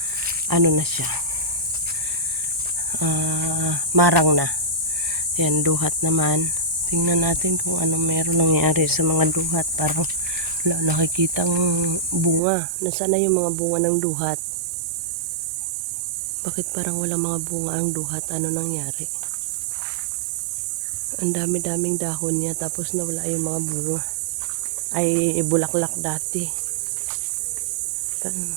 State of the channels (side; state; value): left; drops out; at 12.4 s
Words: ano na siya, marang na. Yan, duhat naman. Tingnan natin kung ano meron nangyari sa mga duhat. Parang wala nakikitang bunga. Nasaan na yung mga bunga ng duhat? Bakit parang wala mga bunga ang duhat? Ano nangyari? Ang dami-daming dahon niya tapos nawala yung mga bunga. Ay bulaklak dati.